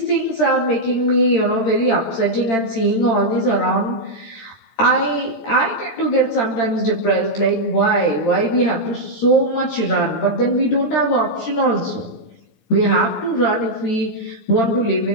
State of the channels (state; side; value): late; right; 13 ms